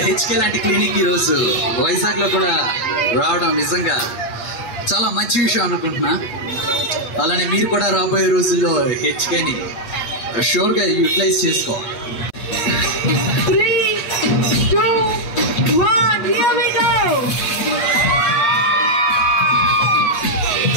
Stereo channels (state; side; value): late; right; 8.4 ms